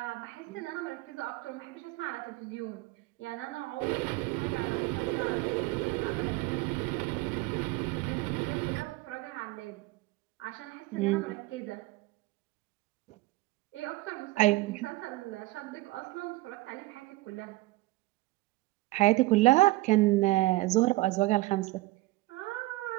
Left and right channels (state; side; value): quieter; left; 20.0 dB